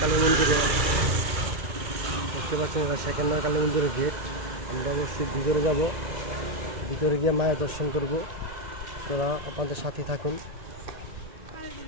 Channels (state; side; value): late; left; 2.3 ms